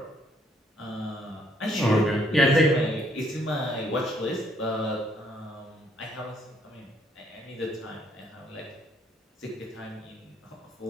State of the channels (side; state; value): both; normal; correlation 0.68